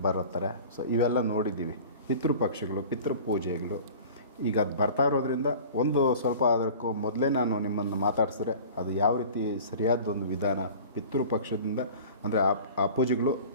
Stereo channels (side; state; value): both; inverted; correlation -0.41